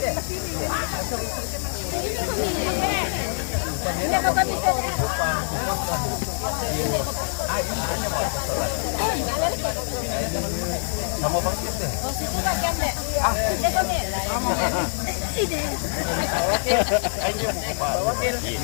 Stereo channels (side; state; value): right; silent; digital silence